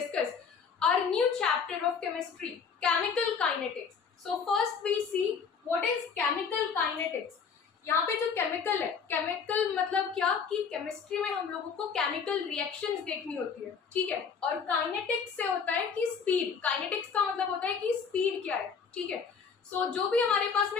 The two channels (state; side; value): quieter; right; 6.1 dB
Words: our new chapter of chemistry, chemical kinetics. So first we see what is chemical kinetics. यहाँ पे जो केमिकल है, केमिकल मतलब क्या कि केमिस्ट्री में हम लोगों को केमिकल रिएक्शंस देखनी होती है, ठीक है। और काइनेटिक्स से होता है कि स्पीड, काइनेटिक्स का मतलब होता है कि स्पीड क्या है, ठीक है। सो जो भी हमारे पास